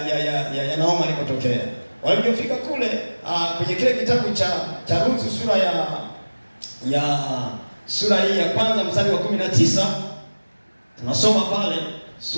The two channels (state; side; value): inverted; both; correlation -1.00